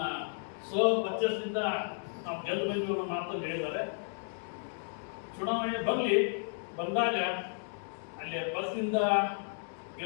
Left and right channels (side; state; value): right; silent; digital silence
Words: ಪರ್ಚೇಸ್ನಿಂದ ನಾವು ಗೆದ್ದು ಬಂದಿವಿ ಅನ್ನೋ ಮಾತನ್ನು ಹೇಳಿದ್ದಾರೆ. ಚುನಾವಣೆ ಬಂದಾಗ ಅಲ್ಲಿ ಪಕ್ಷದಿಂದ